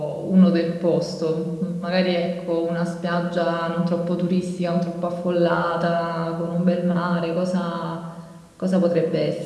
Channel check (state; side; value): identical; both; correlation 1.00